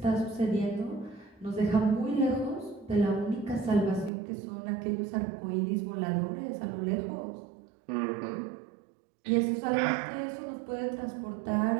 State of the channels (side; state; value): left; drops out; at 4.1 s